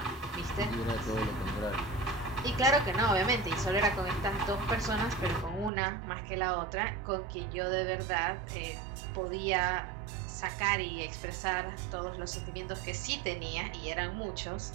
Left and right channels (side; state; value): left; drops out; at 5.7 s